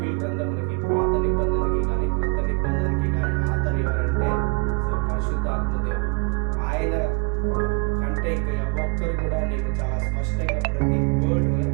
గ్రంథములకి, పాత నిబంధనకి కానీ క్రొత్త నిబంధనకి కానీ ఆతరు ఎవరంటే పరిశుద్ధాత్మ దేవుడు. ఆయన కంటే ఇంకా ఒక్కరు కూడా నీకు చాలా స్పష్టంగా ప్రతి వర్డ్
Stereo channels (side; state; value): left; quieter; 33.3 dB